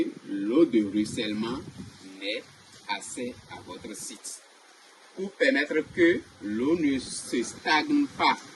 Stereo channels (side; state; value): both; identical; correlation 1.00